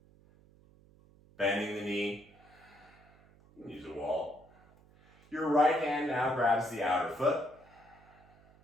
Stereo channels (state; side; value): noise; right; hum, 27 dB below the sound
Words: Bending the knee. Use a wall. Your right hand now grabs the outer foot.